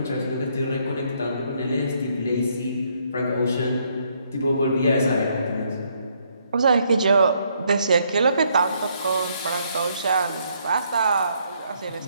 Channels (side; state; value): both; inverted; correlation -0.71